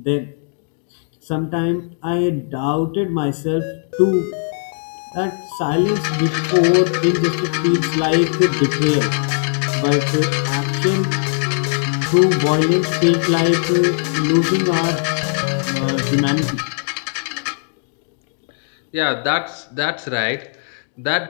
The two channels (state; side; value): silent; right; digital silence